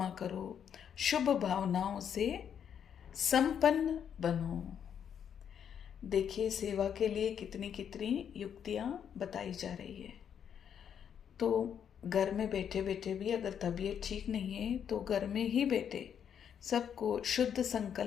करो, शुभ भावनाओं से संपन्न बनो। देखिए सेवा के लिए कितनी कितनी युक्तियाँ बताई जा रही है। तो घर में बैठे बैठे भी अगर तबीयत ठीक नहीं है तो घर में ही बैठे सबको शुद्ध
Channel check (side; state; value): right; quieter; 8.3 dB